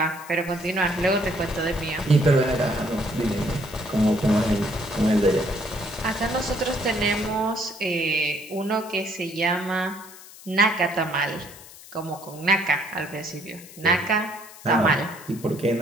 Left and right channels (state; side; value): noise; left; hiss, 18 dB below the sound